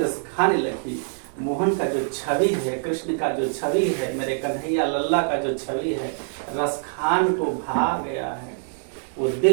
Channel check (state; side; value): silent; left; digital silence